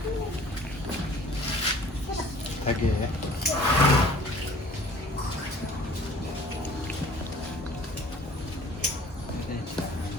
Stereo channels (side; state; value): both; normal; correlation 0.50